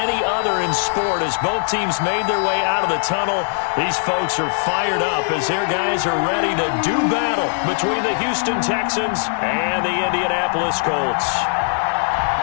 other in sport as both teams made their way out of the tunnel. These folks are fired up as their guys are ready to do battle between the Houston Texans and the Indianapolis Colts.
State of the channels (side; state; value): right; silent; 65 dB below the other